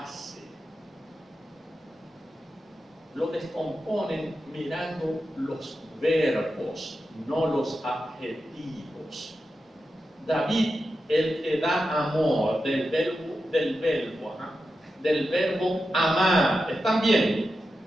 Lo descomponen mirando los verbos, no los adjetivos. David, el que da amor, del verbo amar, ¿están viendo?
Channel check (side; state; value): both; normal; correlation 0.90